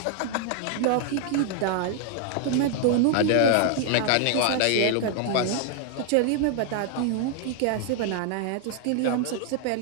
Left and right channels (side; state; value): both; different; correlation 0.00